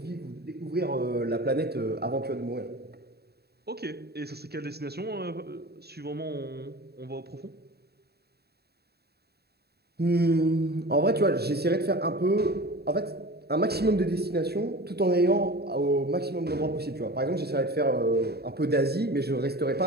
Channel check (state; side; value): late; left; 0.47 ms